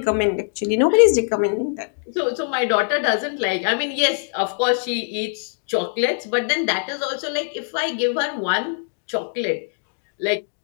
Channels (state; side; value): silent; right; digital silence